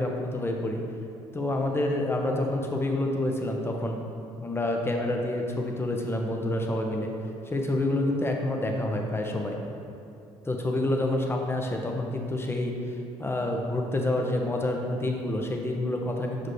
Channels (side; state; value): both; normal; correlation 0.73